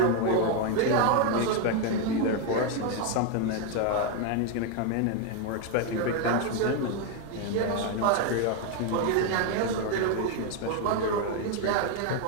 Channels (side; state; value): both; different; correlation 0.01